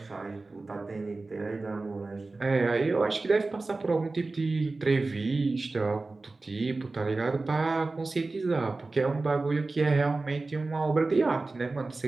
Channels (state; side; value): quieter; left; 3.4 dB